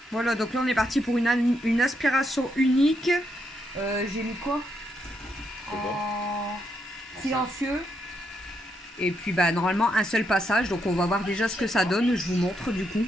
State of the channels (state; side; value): normal; both; correlation 0.79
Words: Voilà, donc là on est parti pour une aspiration unique. J'ai mis quoi? En silencieux. Et puis bah normalement un seul passage, donc on va voir déjà ce que ça donne, je vous montre du coup.